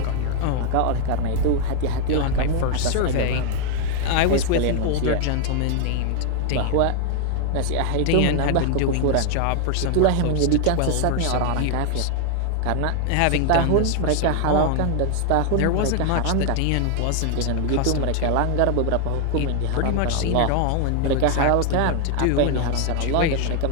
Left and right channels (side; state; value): both; different; correlation 0.00